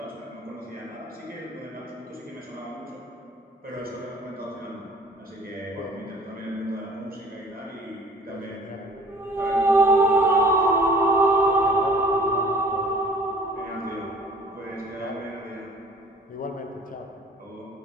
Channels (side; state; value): both; normal; correlation 0.51